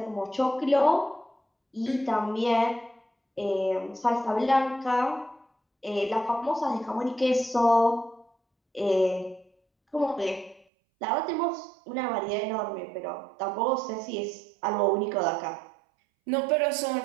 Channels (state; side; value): drops out; left; at 10.7 s